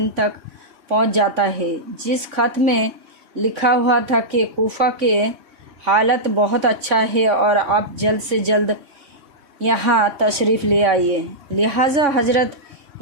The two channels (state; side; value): late; left; 3.5 ms